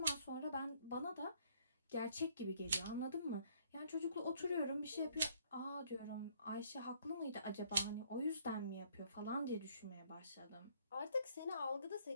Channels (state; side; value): inverted; both; correlation -0.63